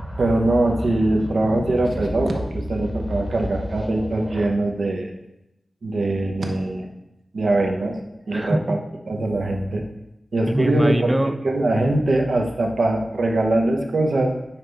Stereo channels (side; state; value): both; normal; correlation 0.95